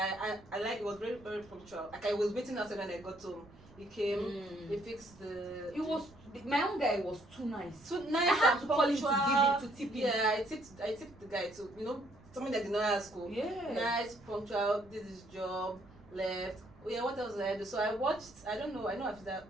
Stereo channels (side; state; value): right; noise; rumble, 24 dB below the sound